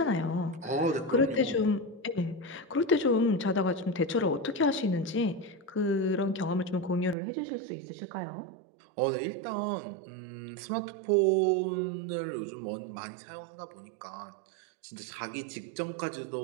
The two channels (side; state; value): left; drops out; at 7.2 s